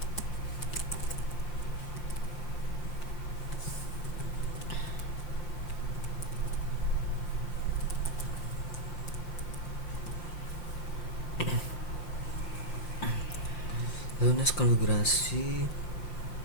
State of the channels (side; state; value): right; late; 5.7 ms